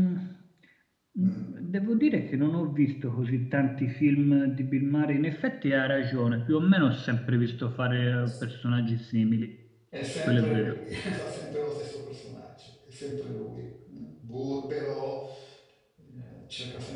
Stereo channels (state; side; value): identical; both; correlation 1.00